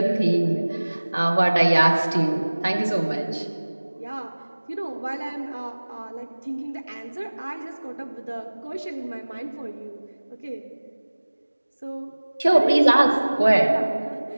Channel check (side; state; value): both; inverted; correlation -1.00